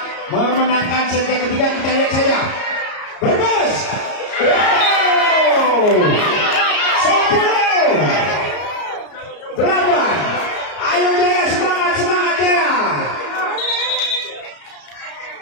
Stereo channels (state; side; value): late; right; 34 ms